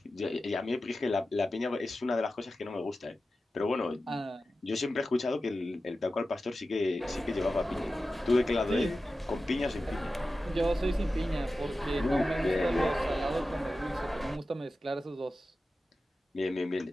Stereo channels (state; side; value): normal; both; correlation 0.93